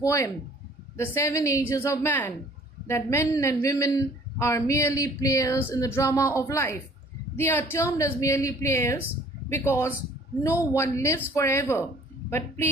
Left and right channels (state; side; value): normal; both; correlation 0.54